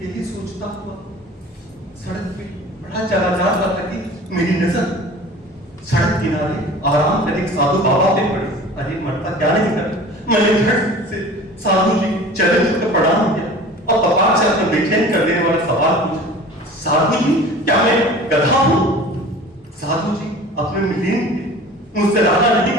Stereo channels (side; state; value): both; normal; correlation 0.42